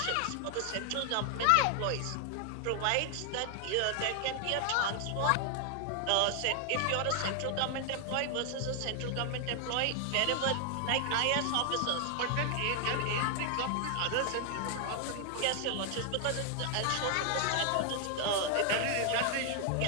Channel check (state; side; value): different; both; correlation 0.00